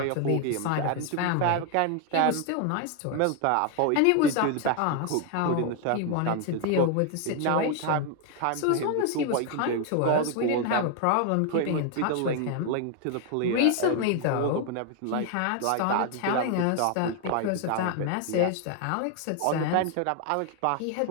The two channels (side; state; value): both; different; correlation 0.01